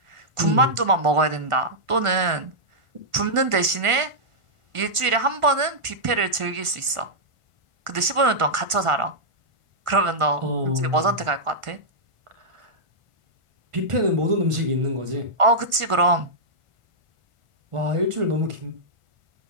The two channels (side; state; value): left; late; 1.4 ms